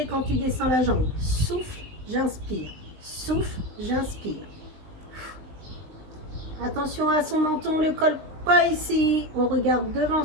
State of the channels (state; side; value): late; left; 19 ms